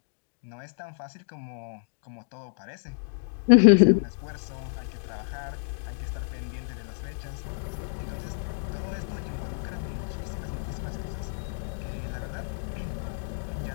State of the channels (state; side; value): silent; right; digital silence